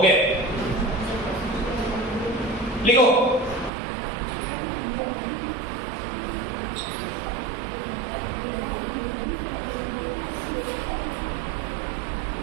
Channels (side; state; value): left; drops out; at 3.7 s